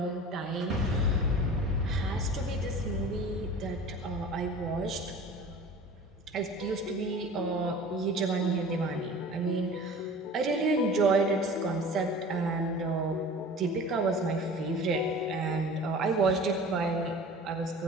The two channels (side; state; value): both; normal; correlation 0.41